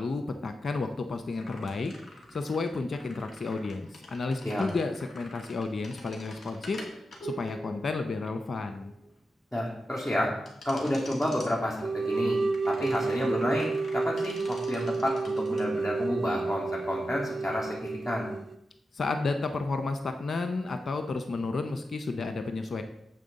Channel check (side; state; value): both; normal; correlation 0.89